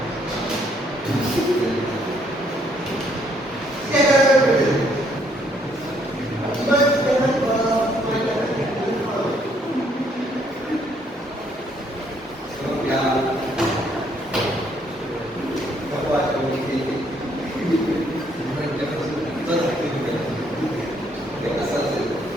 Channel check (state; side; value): normal; both; correlation 0.68